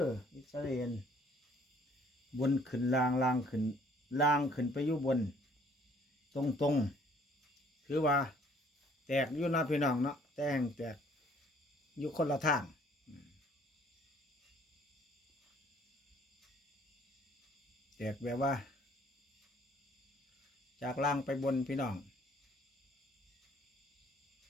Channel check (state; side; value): normal; both; correlation 0.60